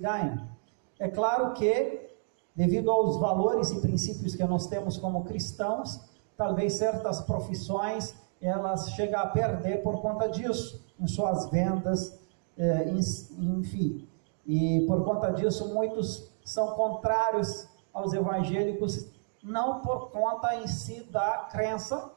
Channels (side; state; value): left; silent; digital silence